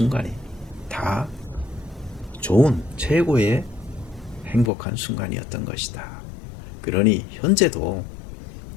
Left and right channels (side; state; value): right; drops out; at 4.7 s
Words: 다 좋은 최고의 행복한 순간이었던 것이다. 그러니 현재도